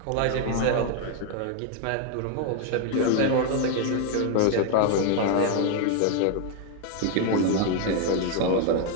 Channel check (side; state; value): both; different; correlation 0.00